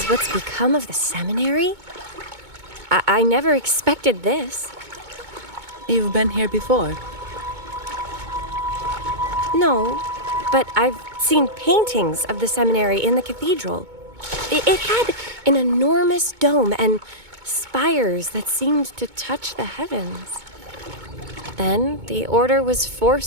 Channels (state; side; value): late; left; 2.2 ms